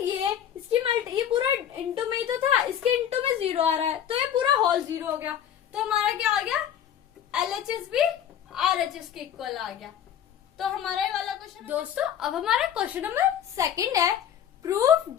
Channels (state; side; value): quieter; right; 9.7 dB